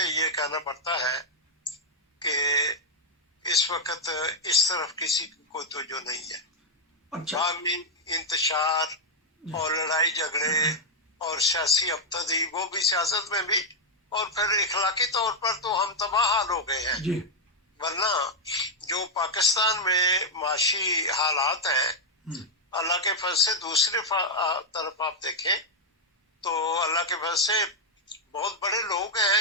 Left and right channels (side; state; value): both; normal; correlation -0.02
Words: یہ کہنا پڑتا ہے کہ اس وقت اس طرف کسی کو توجہ نہیں ہے. باہمی انتشار اور لڑائی جھگڑے اور سیاسی ابتدی, وہ بھی سیاست میں بھی, اور پھر اخلاقی طور پر تو ہم تباہ حال ہو گئے ہیں. جی. ورنہ جو پاکستان میں معاشی حالات ہیں, اللہ کے فضل سے دوسری طرف آپ دیکھیں تو اللہ کے فضل سے بہت بڑے لوگ ہیں